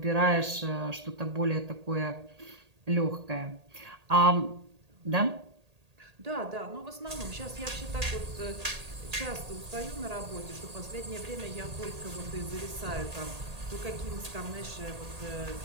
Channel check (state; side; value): late; left; 1.8 ms